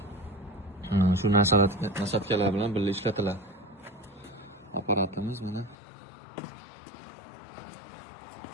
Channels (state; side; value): drops out; right; at 5.8 s